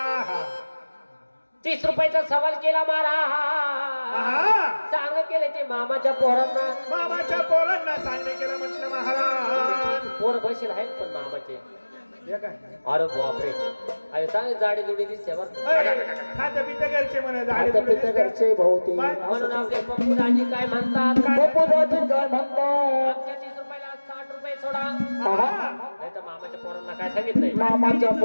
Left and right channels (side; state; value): both; inverted; correlation -1.00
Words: 30 रुपयाचा सवाल केला महाराज सांग केले ते मामाच्या पोरांना सांगणे केलं म्हटलं महाराज पोर बसेल आहेत पण मामाचे हे काय अरे बापरे अरे चांगली जाडी जुडी दिसते बरं खातं पितं घरचे म्हणे झाडे आता पित्या घरचे भाऊ ते म्हणून आपले पप्पूदाजी काय म्हणतात पप्पूदाजी काय म्हणतात आमच्या 30 रुपयाला 60 रुपये सोडा नाही तर मामाच्या पोरांना काय सांगितलंय मामाच्या